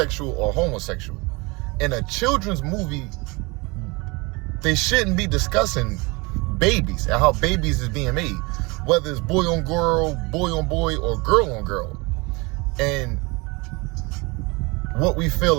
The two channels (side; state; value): left; quieter; 26.5 dB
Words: or homosexual. In a children's movie, they shouldn't be discussing babies and how babies is being made, whether it's boy on boy, or girl on girl. And what we fail